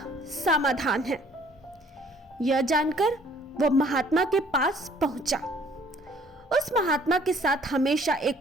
समाधान है। यह जानकर वो महात्मा के पास पहुंचा। उस महात्मा के साथ हमेशा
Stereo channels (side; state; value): both; normal; correlation 0.58